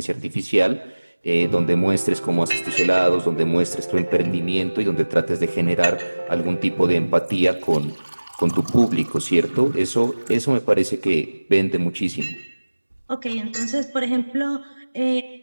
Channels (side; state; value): both; inverted; correlation -1.00